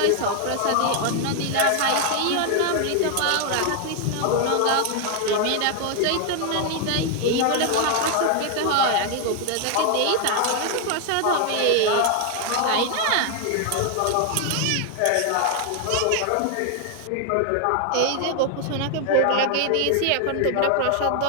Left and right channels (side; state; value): both; different; correlation 0.00